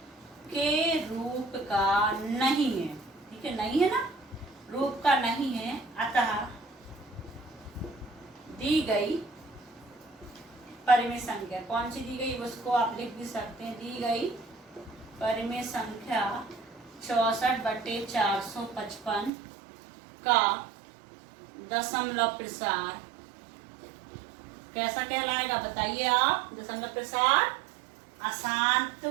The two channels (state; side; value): drops out; left; at 19.3 s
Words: के रूप का नहीं है। ठीक है, नहीं है ना, रूप का नहीं है। अतः दी गई परिमेय संख्या कौन सी दी गई, उसको आप लिख भी सकते हैं। दी गई परिमेय संख्या 64 बटे 455 का दशमलव प्रसार कैसा कहलाएगा? बताइए आप। दशमलव प्रसार अशांत